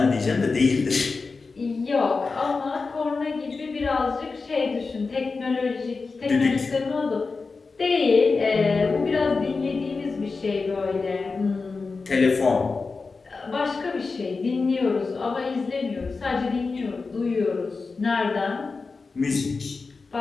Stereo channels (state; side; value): quieter; right; 4.3 dB